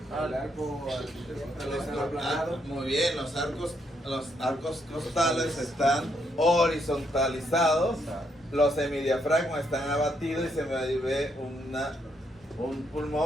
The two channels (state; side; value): normal; both; correlation 0.75